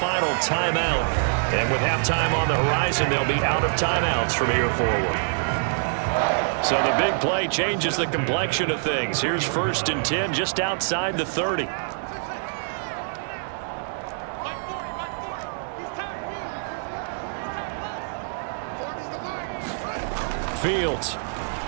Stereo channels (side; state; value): left; silent; digital silence